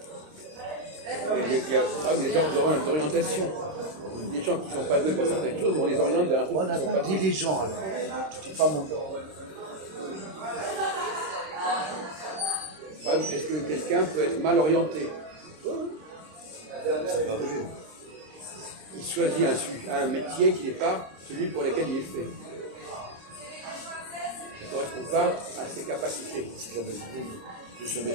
Il y a des gens d'orientation. Des gens qui ne sont pas doués pour certaines choses et on les oriente vers un truc Voilà, qui ne sont pas dis doués. les gens alors. Tu dis pas mon nom. Est-ce que quelqu'un peut être mal orienté? Ça peut arriver. Il choisit un métier qui n'est pas celui pour lequel il est fait. Ça ne correspond pas à ses capacités. C'est la base de ce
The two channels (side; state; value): left; late; 26 ms